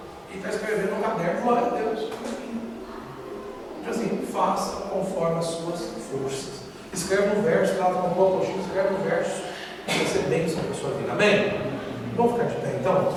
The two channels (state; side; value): identical; both; correlation 1.00